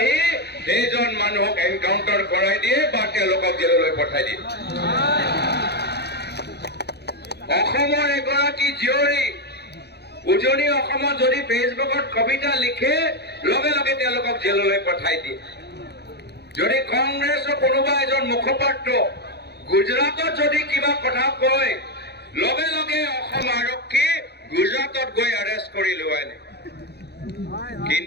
সেইজন মানুহক এনকাউণ্টাৰ কৰাই দিয়ে বা তেওঁলোকক জেললৈ পঠাই দিয়ে অসমৰ এগৰাকী জীয়ৰী উজনি অসমত যদি ফেচবুকত কবিতা লিখে লগে লগে তেওঁলোকক জেললৈ পঠাই দিয়ে যদি কংগ্ৰেছৰ কোনোবা এজন মুখপাত্ৰ গুজৰাটত যদি কিবা কথা কয় লগে লগে অসম আৰক্ষী গুজৰাটত গৈ এৰেষ্ট কৰি লৈ আনে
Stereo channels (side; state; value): right; late; 0.48 ms